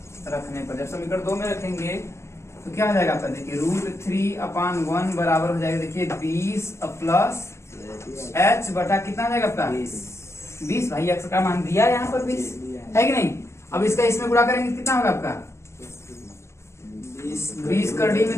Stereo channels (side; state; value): right; late; 0.13 ms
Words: रखने पर, जब समीकरण 2 में रखेंगे तो क्या हो जाएगा आपका, देखिए √3/1 बराबर हो जाएगा, देखिए 20 प्लस h बटा कितना हो जाएगा आपका 20। भाई x का मान दिया यहाँ पर 20 है कि नहीं। अब इसका इसमें गुणा करेंगे कितना होगा आपका 20 कर डी